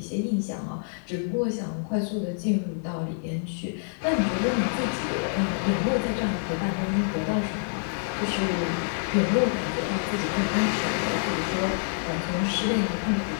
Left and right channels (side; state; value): right; silent; 60 dB below the other